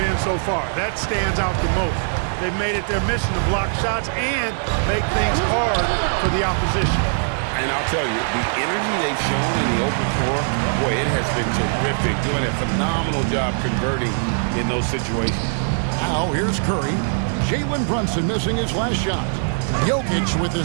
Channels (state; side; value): silent; left; digital silence